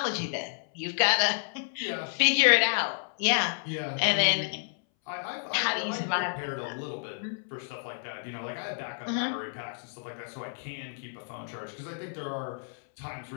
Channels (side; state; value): right; silent; 58 dB below the other